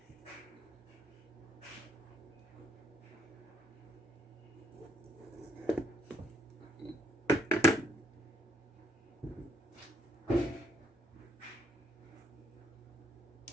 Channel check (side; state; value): both; normal; correlation 0.70